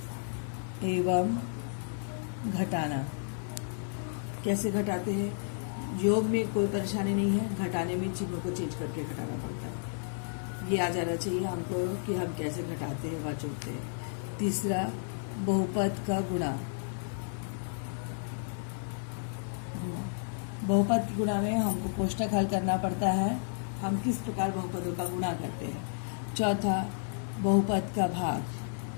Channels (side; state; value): right; silent; 56 dB below the other